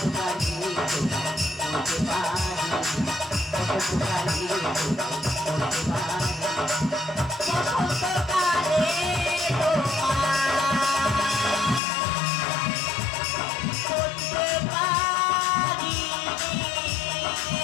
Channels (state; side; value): drops out; right; at 11.8 s